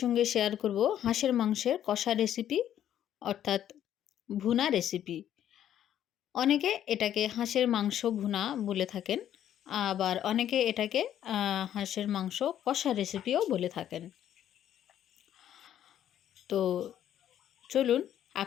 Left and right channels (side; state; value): right; quieter; 10.8 dB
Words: সঙ্গে শেয়ার করব হাঁসের মাংসের কষা রেসিপি, অর্থাৎ ভুনা রেসিপি। অনেকে এটাকে হাঁসের মাংস ভুনা বলে থাকেন, আবার অনেকে এটাকে হাঁসের মাংস কষা রেসিপিও বলে থাকেন। তো চলুন